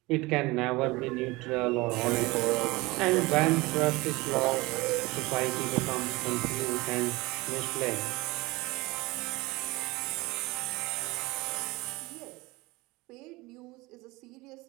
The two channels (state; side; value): quieter; left; 22.3 dB